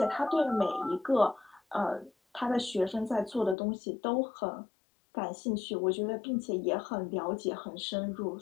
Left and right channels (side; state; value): right; drops out; at 3.6 s